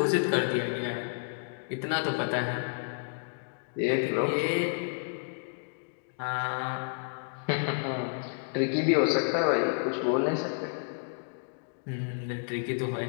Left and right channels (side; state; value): right; silent; digital silence